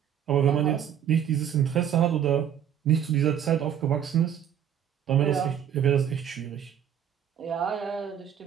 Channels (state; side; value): quieter; left; 9.2 dB